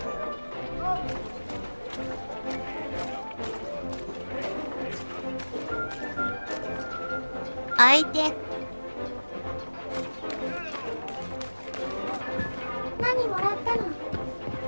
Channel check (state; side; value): inverted; both; correlation -1.00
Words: 相手。何もらったの？